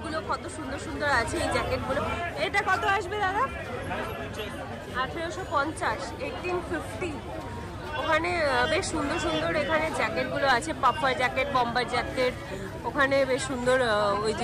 কত সুন্দর সুন্দর আছে। এই জ্যাকেটগুলো এটা কত আসবে দাদা? 1850, 1850। ওখানে বেশ সুন্দর সুন্দর এখানে জ্যাকেটগুলো আছে, পাফার জ্যাকেট, বম্বার জ্যাকেট। ওখানে বেশ সুন্দর ওই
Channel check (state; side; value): identical; both; correlation 1.00